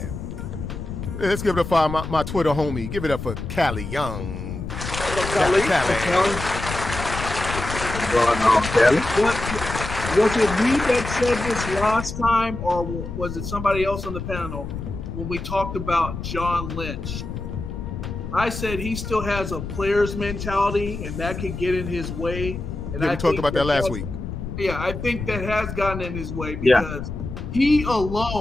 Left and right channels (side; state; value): left; noise; rumble, 7 dB below the sound